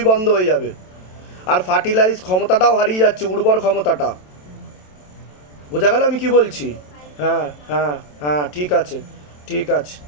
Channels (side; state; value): right; late; 27 ms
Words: বন্ধ হয়ে যাবে। আর ফার্টিলাইজ ক্ষমতাটাও হারিয়ে যাচ্ছে, উর্বর ক্ষমতাটা। বোঝা গেল আমি কি বলছি? হ্যাঁ হ্যাঁ হ্যাঁ, ঠিক আছে ঠিক আছে